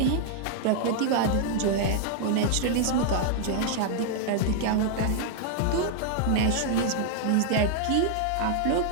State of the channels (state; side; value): different; both; correlation 0.00